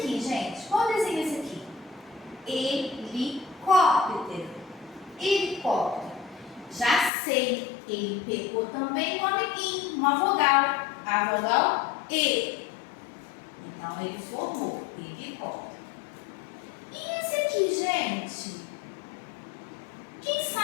gente? Qual desenho é esse aqui? Helicóptero. Helicóptero. Já sei, ele pegou também um amiguinho, uma vogal. A vogal E. Então, ele formou helicóptero. E esse aqui, gente? Quem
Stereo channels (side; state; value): right; drops out; at 7.1 s